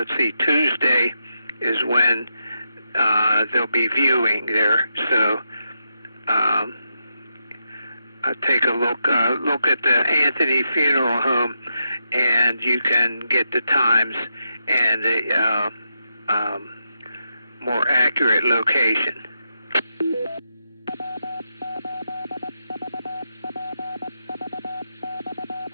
see, Tuesday is when they'll be viewing there. So take a look at the Anthony Funeral Home, and you can get the times and the more accurate location.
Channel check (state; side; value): inverted; both; correlation -0.84